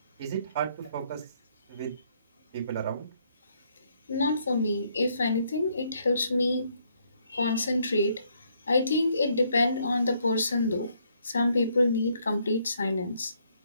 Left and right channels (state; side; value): inverted; both; correlation -0.71